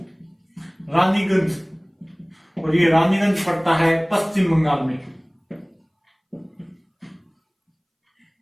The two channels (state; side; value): identical; both; correlation 1.00